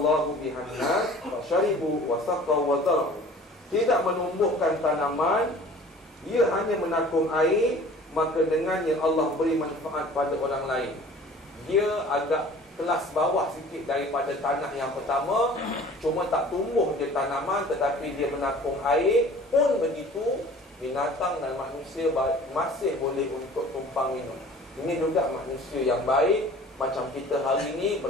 bihan nas fa syaribu wa saqaw wa zara'u. Tidak menumbuhkan tanaman, ia hanya menakung air, maka dengannya Allah beri manfaat pada orang lain. Dia agak kelas bawah sikit daripada tanah yang pertama, cuma tak tumbuh je tanaman, tetapi dia menakung air. Pun begitu, binatang dan manusia masih boleh untuk tumpang minum. Ini juga manusia yang baik. Macam kita hari ini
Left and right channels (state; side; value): normal; both; correlation 0.47